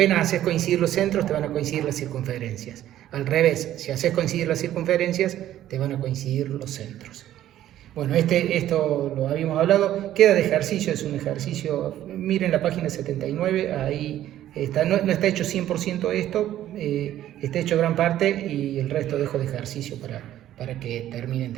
haces coincidir los centros, te van a coincidir las circunferencias. Al revés, si haces coincidir las circunferencias, te van a coincidir los centros. Bueno, esto lo habíamos hablado, queda de ejercicio, es un ejercicio, miren la página 79, ahí está, no está hecho 100% esto, está hecho gran parte y el resto dejo de ejercicio para que terminen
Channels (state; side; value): quieter; left; 12.6 dB